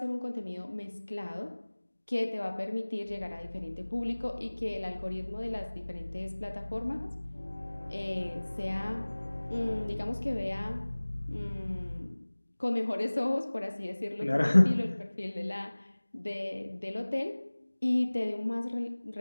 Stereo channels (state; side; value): inverted; both; correlation -1.00